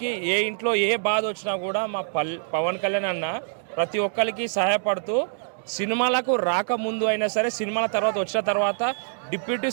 ఏ ఇంట్లో ఏ బాధ వచ్చినా కూడా మా పవన్ కళ్యాణ్ అన్న ప్రతి ఒక్కరికి సహాయపడుతూ సినిమాలకు రాకముందు అయినా సరే, సినిమాల తర్వాత వచ్చిన తర్వాత, డిప్యూటీ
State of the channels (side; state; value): left; silent; digital silence